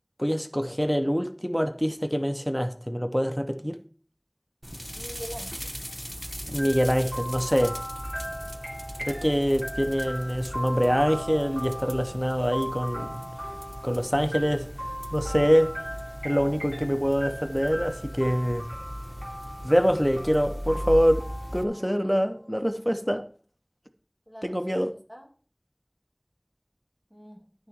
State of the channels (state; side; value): identical; both; correlation 1.00